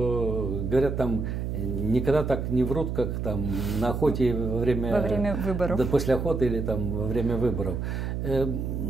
говорят, там никогда так не врут, как там на охоте во время выборов. Да, после охоты или там во время выборов.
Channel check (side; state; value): right; noise; hum, 3 dB below the sound